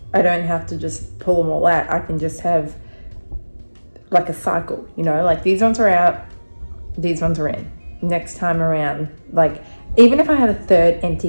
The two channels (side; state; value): both; inverted; correlation -1.00